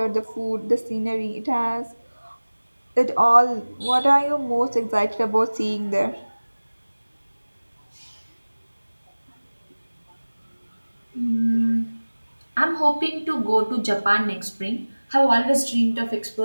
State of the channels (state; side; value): inverted; both; correlation -1.00